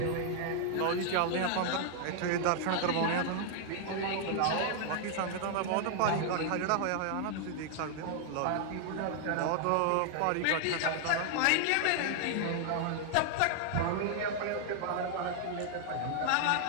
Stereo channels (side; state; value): both; different; correlation 0.00